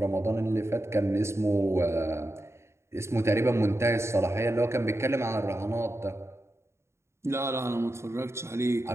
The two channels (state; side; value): late; left; 0.13 ms